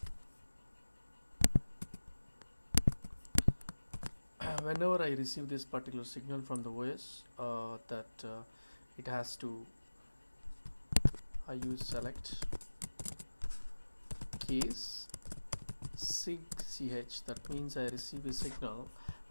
Whenever I receive this particular signal from the OS, it has to, I use select case sig ch. That means I receive a signal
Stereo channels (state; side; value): inverted; both; correlation -1.00